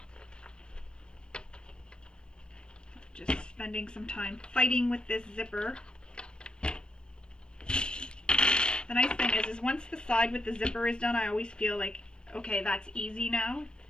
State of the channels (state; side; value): late; right; 0.049 ms